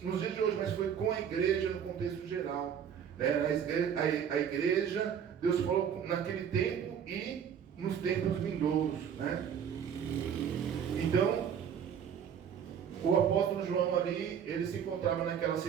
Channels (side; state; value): left; quieter; 8.2 dB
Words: nos dias de hoje, mas foi com a igreja no contexto geral, né? A igreja, Deus falou naquele tempo e nos tempos vindouros, né? Então, o apóstolo João ali, ele se encontrava naquela